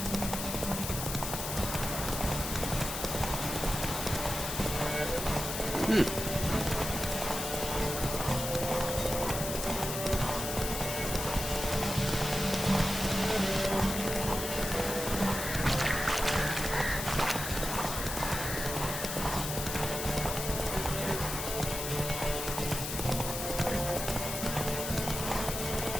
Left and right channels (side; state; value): left; noise; hiss, 4 dB below the sound